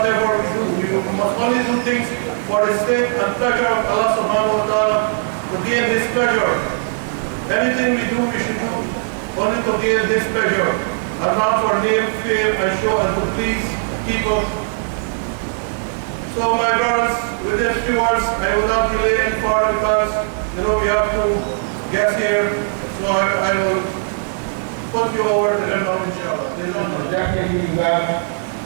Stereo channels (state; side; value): silent; left; 66 dB below the other